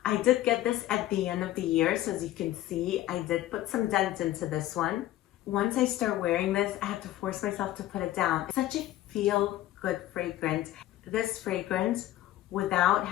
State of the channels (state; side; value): quieter; right; 14.5 dB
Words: I did get this at the end of the year, so as you can see, I did put some dent into this one. Once I start wearing this, I have to force myself to put it down. It's such a feel-good fragrance. This fragrance, without